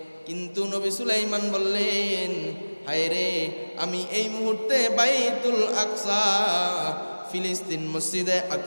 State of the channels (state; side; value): inverted; both; correlation -1.00